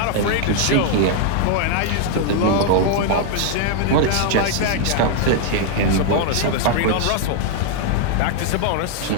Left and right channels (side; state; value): both; different; correlation 0.00